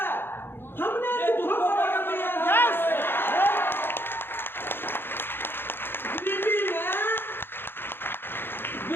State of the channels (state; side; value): late; right; 0.10 ms